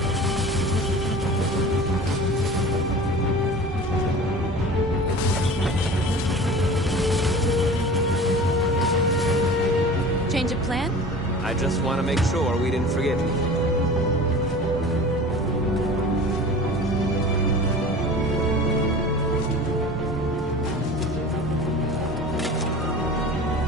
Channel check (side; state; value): both; normal; correlation 0.38